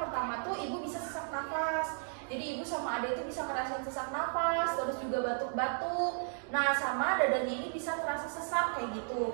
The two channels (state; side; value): silent; left; 55 dB below the other